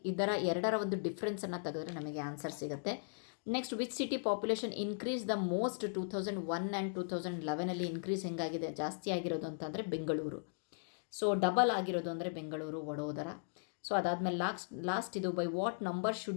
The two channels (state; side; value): silent; right; digital silence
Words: ಎರಡರ ಒಂದು ಡಿಫ್ರೆನ್ಸನ್ನು ತೆಗೆದ್ರೆ ನಮಗೆ ಆನ್ಸರ್ ಸಿಗುತ್ತೆ. Next which city population increase the most 2001 and 2011 increase ಹೆಂಗಾಗಿದೆ, ಜಾಸ್ತಿ ಆಗಿರೋದು ಅಂತಂದರೆ ಬೆಂಗಳೂರು. ಸೊ ಡಬಲ್ ಆಗಿರೋದು ಅಂದರೆ ಬೆಂಗಳೂರು, ವಡೋದರ. ಸೊ ಅದಾದಮೇಲೆ ಲಾಸ್ಟ್ ಇದು by what number